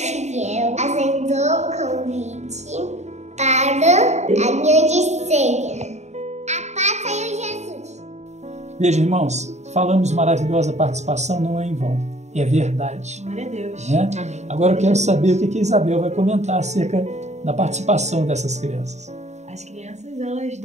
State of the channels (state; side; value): late; left; 0.33 ms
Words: aceitou o convite para a grande ceia. A paz do Senhor Jesus. Veja, irmãos, falamos maravilhosa participação, não é em vão. É verdade. Glória a Deus. Né? Agora eu quero saber o que a Isabel vai comentar acerca da participação dessas crianças. As crianças, elas